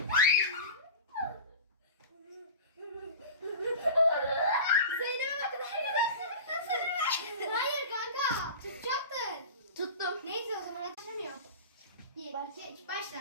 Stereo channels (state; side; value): inverted; both; correlation -0.32